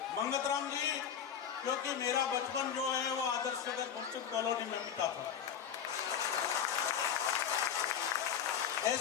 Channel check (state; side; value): quieter; right; 8.3 dB